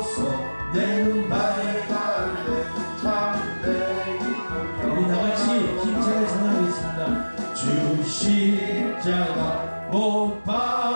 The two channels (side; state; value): both; inverted; correlation -1.00